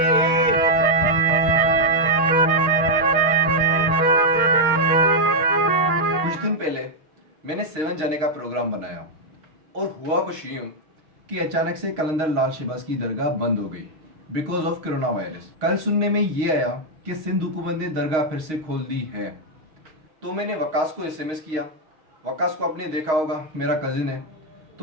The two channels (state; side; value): late; left; 6.4 ms